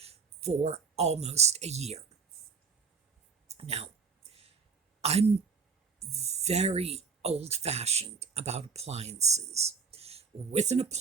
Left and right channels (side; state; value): left; quieter; 5.3 dB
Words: for almost a year. Now, I'm very old-fashioned about appliances. With an